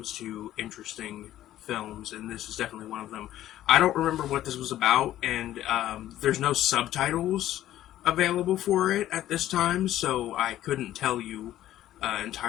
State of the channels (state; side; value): quieter; right; 13.2 dB